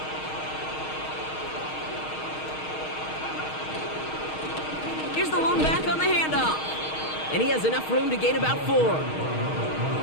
Here's the lone back on the handoff. And he has enough room to gain about 4.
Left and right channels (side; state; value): right; late; 6.4 ms